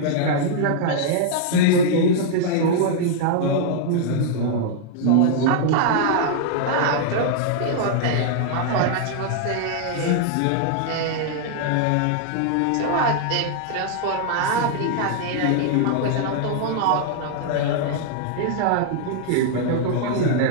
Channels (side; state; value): both; different; correlation 0.00